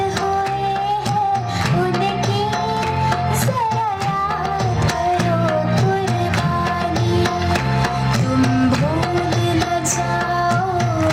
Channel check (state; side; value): identical; both; correlation 1.00